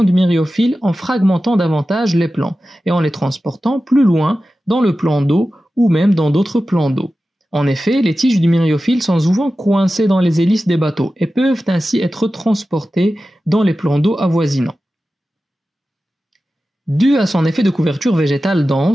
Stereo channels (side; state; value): both; normal; correlation 0.94